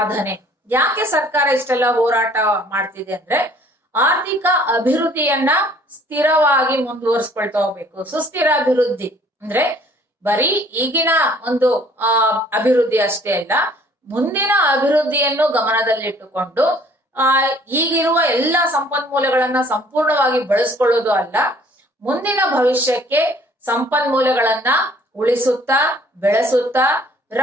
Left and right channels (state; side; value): normal; both; correlation 0.57